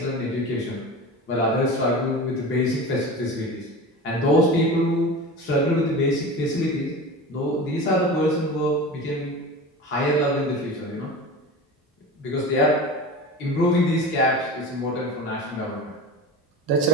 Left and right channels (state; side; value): normal; both; correlation 0.32